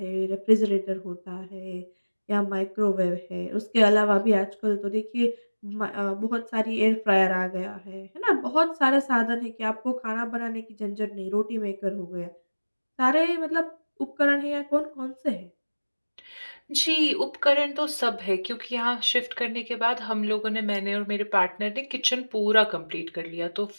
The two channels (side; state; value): both; inverted; correlation -1.00